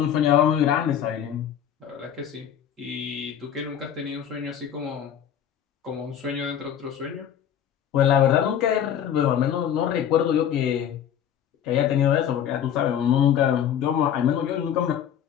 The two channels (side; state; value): right; quieter; 9.4 dB